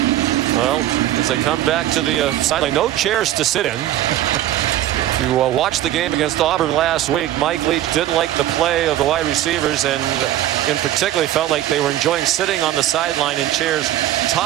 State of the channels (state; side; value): quieter; left; 13.1 dB